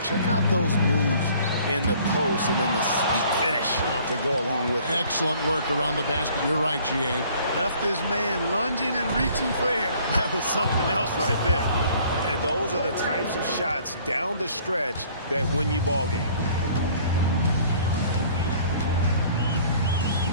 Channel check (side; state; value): both; inverted; correlation -0.55